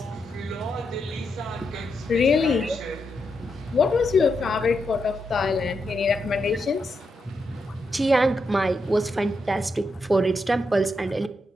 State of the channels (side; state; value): both; normal; correlation 0.83